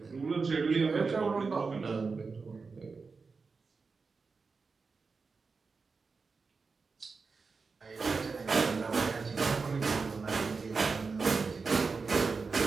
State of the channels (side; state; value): left; quieter; 4.6 dB